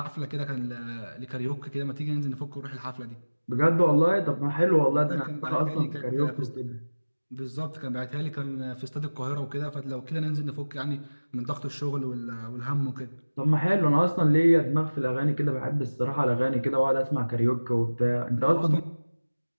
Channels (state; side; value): inverted; both; correlation -1.00